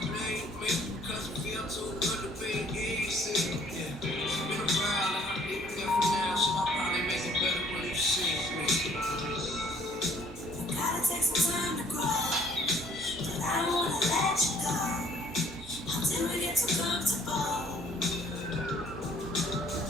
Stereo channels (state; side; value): normal; both; correlation 0.59